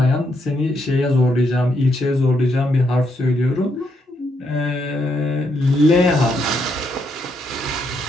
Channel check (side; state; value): both; normal; correlation 0.77